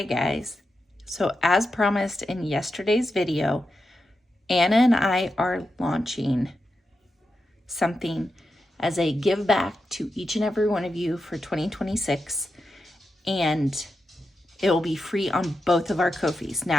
guys. So as promised in yesterday's video, Anna and I are launching something as a give back to each and every one of you for 2026. And it will be free on both of our Ko-fis.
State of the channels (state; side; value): normal; both; correlation 0.88